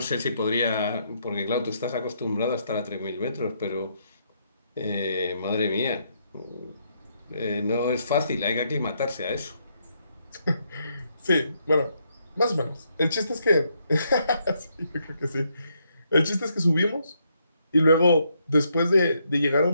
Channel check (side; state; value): both; inverted; correlation -0.75